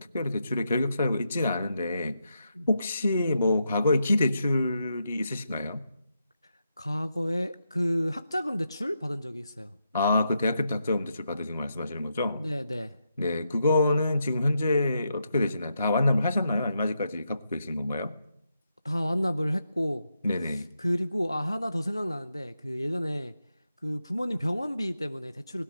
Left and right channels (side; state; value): both; inverted; correlation -0.83